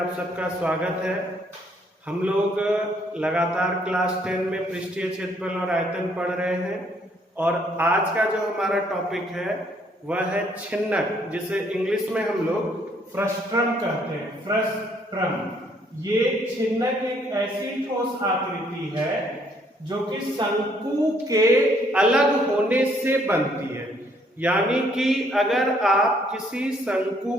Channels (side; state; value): both; normal; correlation 0.66